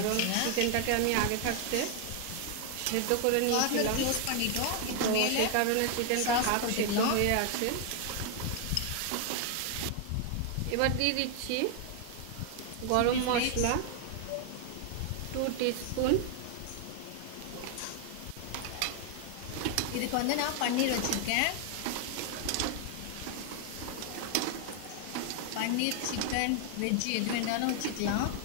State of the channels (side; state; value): both; different; correlation 0.00